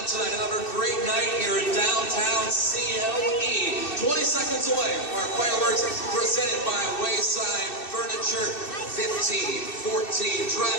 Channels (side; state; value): right; late; 2.6 ms